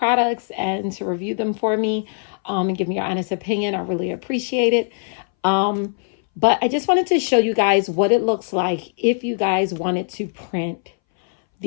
and to review them for me and give me your honest opinion. I really appreciate it. But I just wanted to show you guys what it looks like if you guys wanted to print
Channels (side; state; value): right; silent; 63 dB below the other